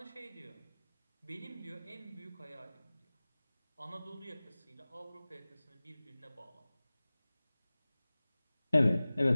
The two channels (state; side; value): inverted; both; correlation -0.98